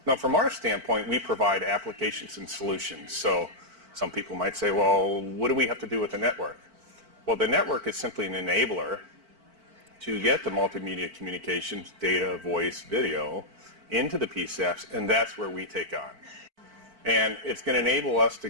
Now, from our standpoint, we provide applications and solutions. So some people might say, well, what do we have to do with the network? Well, the network is simply an enabler to get the multimedia communications, data, voice, video, into the PSAPs, and that's where we take on. And it's going to enable us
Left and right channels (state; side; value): late; left; 4.5 ms